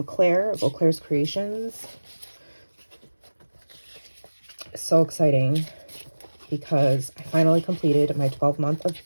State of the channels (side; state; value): both; inverted; correlation -1.00